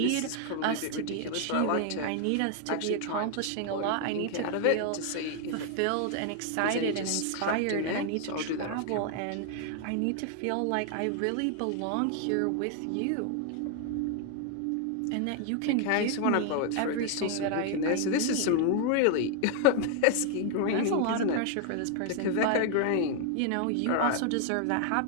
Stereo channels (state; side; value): different; both; correlation 0.00